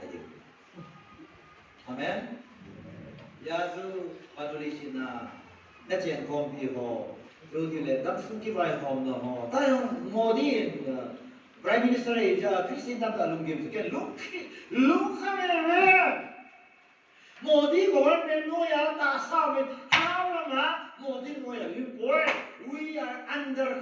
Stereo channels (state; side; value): identical; both; correlation 1.00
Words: amen, ya tu paduli sina, nanti kompi ho. 여기에 남순기 바이 홈도 뭐 다른 모든 프라임 미니스터의 이제 크리스틴 담다 룽김스 게 룩하면 모든 government 노야 다 싸우면 하나마 모든 노야 we are under